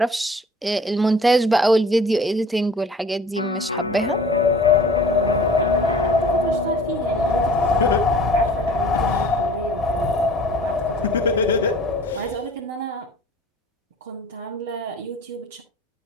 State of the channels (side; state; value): both; normal; correlation 0.47